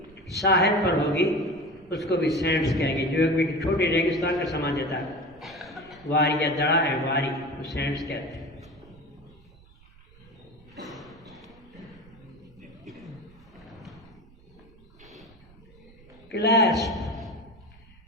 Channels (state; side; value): noise; right; rumble, 25 dB below the sound